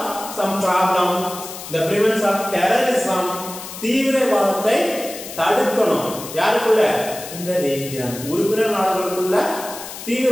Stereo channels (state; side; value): noise; left; hiss, 11 dB below the sound